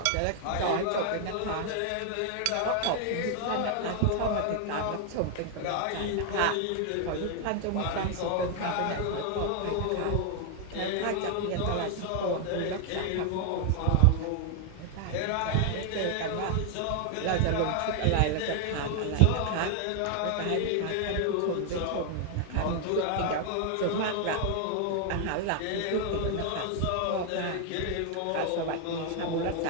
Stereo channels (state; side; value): different; both; correlation 0.00